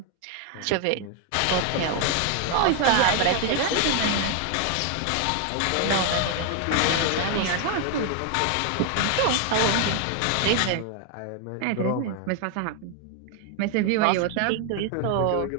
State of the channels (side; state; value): both; different; correlation 0.01